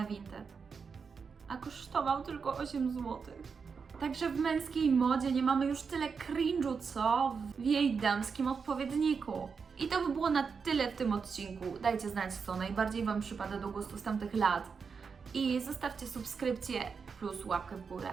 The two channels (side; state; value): left; quieter; 5.6 dB